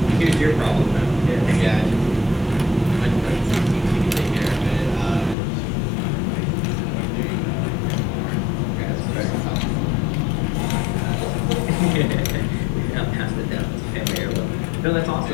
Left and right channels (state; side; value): drops out; right; at 5.4 s